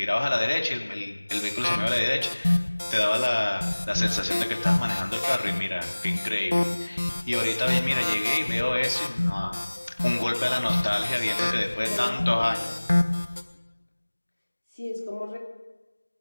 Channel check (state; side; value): inverted; both; correlation -1.00